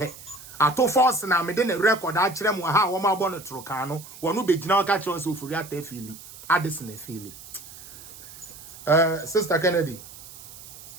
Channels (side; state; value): right; noise; hiss, 17 dB below the sound